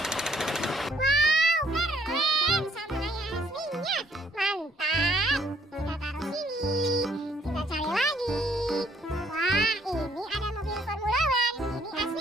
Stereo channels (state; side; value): normal; both; correlation 0.66